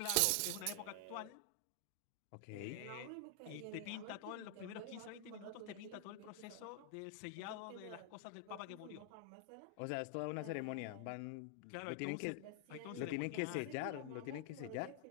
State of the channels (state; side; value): different; both; correlation 0.00